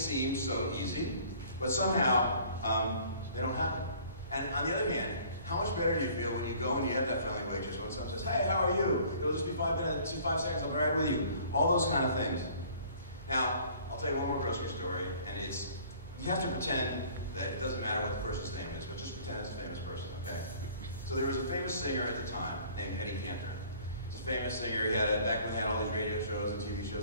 so easy, but somehow they don't happen. And on the other hand, how much better do you feel when you go and you have that friendly waitress when someone says, hey, how are you? It'll just be 5 minutes, 5 seconds, I'll be right with you. All those kind of things. Now, I'll tell you one more grocery story, and it's, you have to pretend that it doesn't matter what the person's name is, but just pretend it's a famous person, okay? So there was a famous singer at the time named Eddie Cantor. He's a famous singer. He had, back when he had all these radio shows and TV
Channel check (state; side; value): inverted; both; correlation -0.53